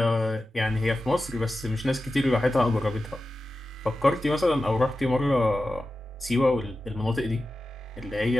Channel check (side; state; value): both; normal; correlation 0.93